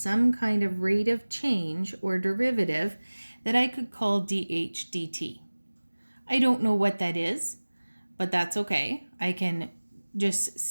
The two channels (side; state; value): both; inverted; correlation -1.00